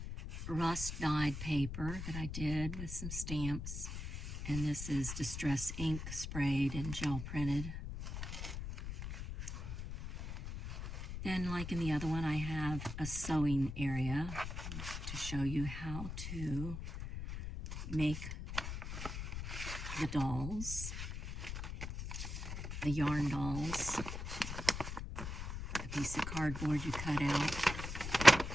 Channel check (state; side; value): noise; left; rumble, 6 dB below the sound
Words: rust-dyed paper that I did with some stamps. And this is distress ink sprayed and gel printed. Then, like in the other one, I have a sewing area to show you how to make the dolls, the yarn dolls. A piece of cardboard you cut out